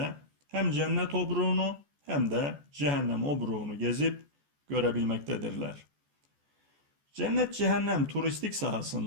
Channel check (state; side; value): late; left; 14 ms